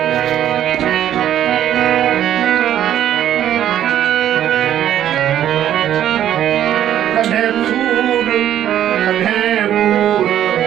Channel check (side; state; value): left; quieter; 11.1 dB